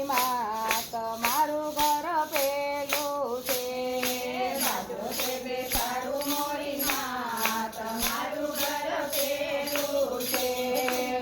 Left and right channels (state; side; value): identical; both; correlation 1.00